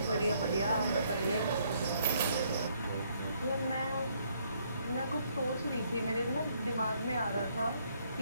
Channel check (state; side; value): inverted; both; correlation -0.69